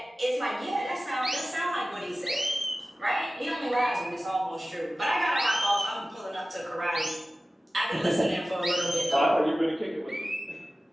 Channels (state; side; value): normal; both; correlation 0.96